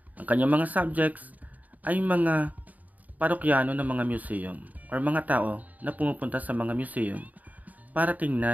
Ang kanyang mga subjects ay mga parokyano ng mga museum or mga tao na pumupunta sa mga museum para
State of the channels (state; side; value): late; left; 0.076 ms